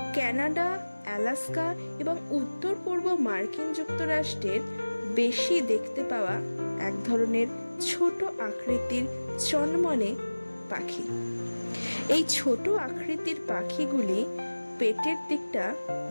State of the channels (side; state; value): both; inverted; correlation -1.00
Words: কানাডা, আলাস্কা এবং উত্তর পূর্ব মার্কিন যুক্তরাষ্ট্রের বেশি দেখতে পাওয়া এক ধরনের ছোট আকৃতির চনমনে পাখি। এই ছোট আকৃতির পাখিগুলি পেটের দিকটা